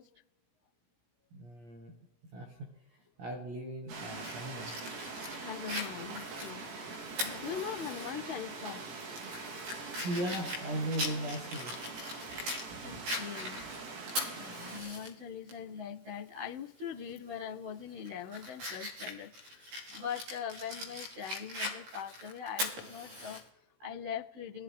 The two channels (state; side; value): late; left; 16 ms